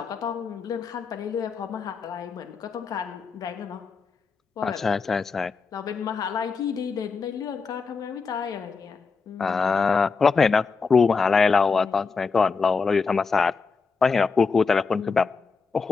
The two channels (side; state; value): right; quieter; 4.9 dB